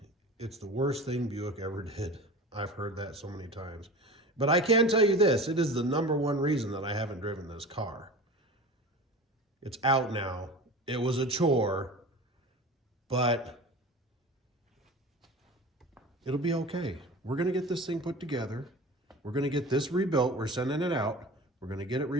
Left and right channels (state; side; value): normal; both; correlation 0.35